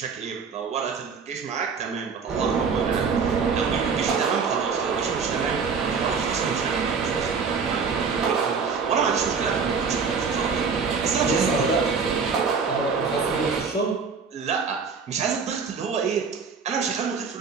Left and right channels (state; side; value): quieter; left; 5.5 dB